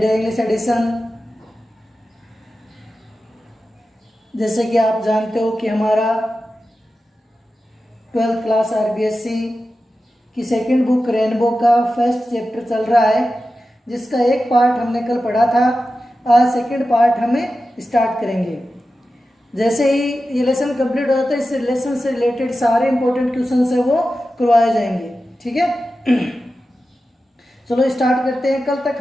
English Edition. जैसे कि आप जानते हो कि हमारा 12th क्लास RBSC की सेकंड बुक रेनबो का फर्स्ट चैप्टर चल रहा है, जिसका एक पार्ट हमने कल पढ़ा था। आज सेकंड पार्ट हमें स्टार्ट करेंगे। जैसे ही ये लेसन कंप्लीट हो जाता है, इस लेसन से रिलेटेड सारे इंपॉर्टेंट क्वेश्चन है वो करवाए जाएंगे। ठीक है, चलो स्टार्ट करते हैं। कल तक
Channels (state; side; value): normal; both; correlation 0.93